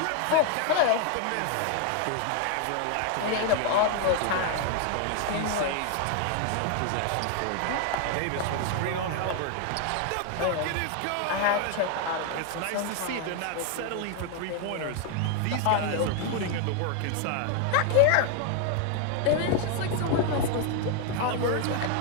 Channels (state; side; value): different; both; correlation 0.00